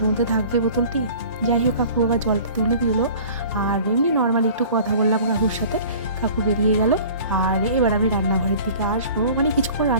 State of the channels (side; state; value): both; inverted; correlation -0.46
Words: মধ্যে থাকবে বোতলটি। যাই হোক, কাকু আবার জলটা তুলে দিল, আর এমনি নর্মালি একটু কথা বললাম কাকুর সাথে। কাকু বেরিয়ে গেল। আর এবার আমি রান্নাঘরের দিকে আসবো, মানে কিছুক্ষণ